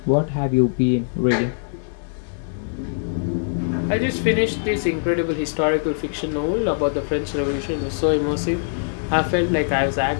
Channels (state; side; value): silent; right; digital silence